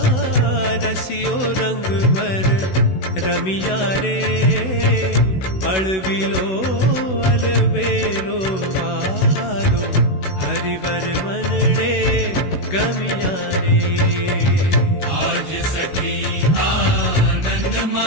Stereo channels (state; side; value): late; right; 16 ms